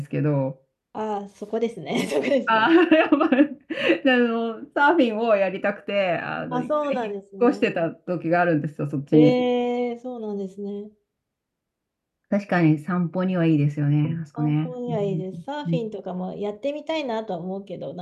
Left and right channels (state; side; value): identical; both; correlation 1.00